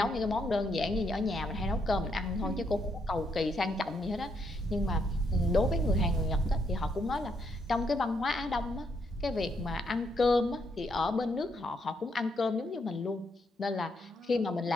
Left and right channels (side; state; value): both; normal; correlation 0.76